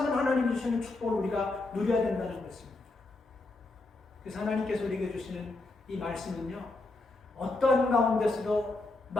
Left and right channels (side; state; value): right; quieter; 3.2 dB